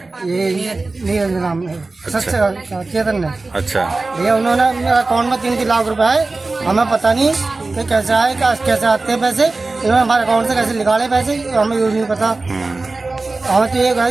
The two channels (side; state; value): left; quieter; 3.5 dB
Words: ये नीरज नाम है, चेतन ने। अच्छा भैया उन्होंने मेरा अकाउंट में 3 लाख रुपए आए। हमें पता नहीं कि कैसे आए, कैसे आते हैं पैसे। इन्होंने हमारे अकाउंट से कैसे निकाले पैसे, हमें ये नहीं पता। हमें तो ये है